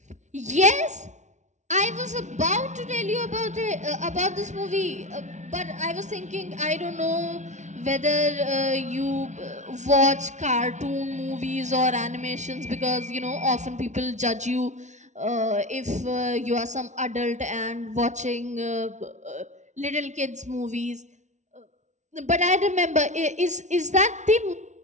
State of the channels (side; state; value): left; late; 0.34 ms